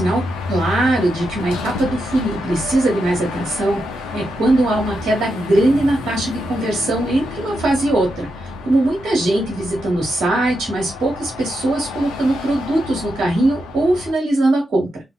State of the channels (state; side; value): normal; both; correlation 0.85